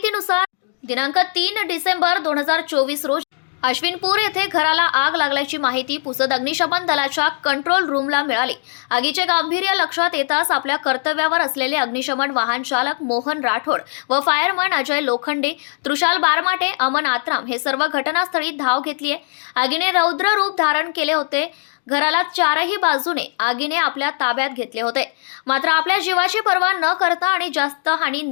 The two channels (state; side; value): silent; right; digital silence